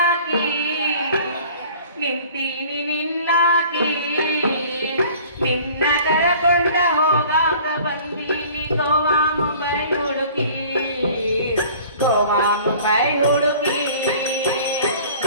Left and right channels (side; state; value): both; inverted; correlation -0.48